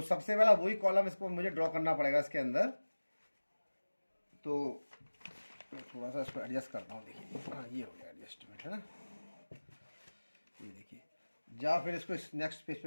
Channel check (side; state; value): both; inverted; correlation -1.00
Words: सबसे पहला वही कॉलम इसको मुझे ड्रॉ करना पड़ेगा इसके अंदर। तो थोड़ा सा इसको एडजस्ट करता हूँ। देखिए, हाँ ये हो गया एडजस्टमेंट, है ना। ये देखिए, या फिर इसको नेक्स्ट पेज पे